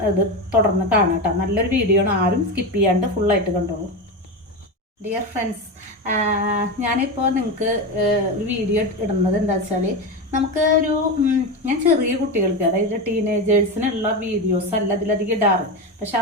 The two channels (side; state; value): both; normal; correlation 0.18